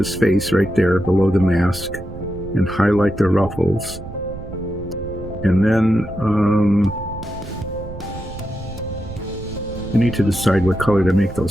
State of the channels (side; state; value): right; noise; rumble, 12 dB below the sound